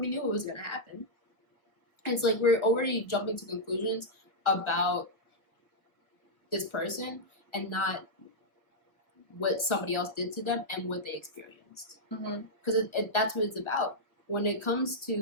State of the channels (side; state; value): right; late; 1.0 ms